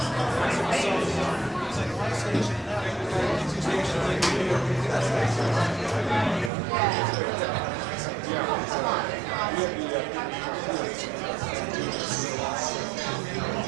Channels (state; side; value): drops out; left; at 6.5 s